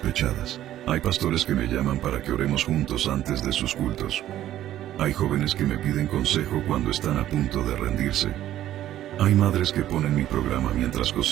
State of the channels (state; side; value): quieter; left; 12.7 dB